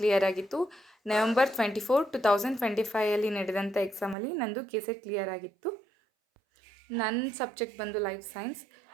ಕ್ಲಿಯರ್ ಆಗಿತ್ತು. November 24, 2025 ನಡೆದಂಥ ಎಕ್ಸಾಮಲ್ಲಿ ನಂದು ಕೇಸೆಟ್ ಕ್ಲಿಯರ್ ಆಗಿತ್ತು. ನನ್ನ ಸಬ್ಜೆಕ್ಟ್ ಬಂದು ಲೈಫ್ ಸೈನ್ಸ್.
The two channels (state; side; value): drops out; left; at 4.2 s